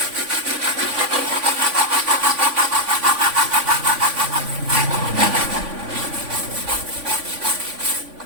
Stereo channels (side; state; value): left; late; 3.5 ms